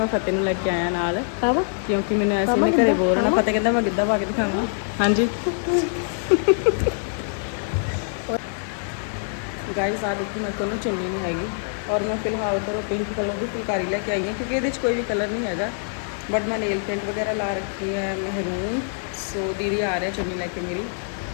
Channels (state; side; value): silent; right; digital silence